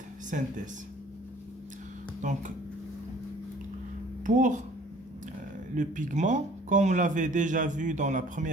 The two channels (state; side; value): normal; both; correlation 0.53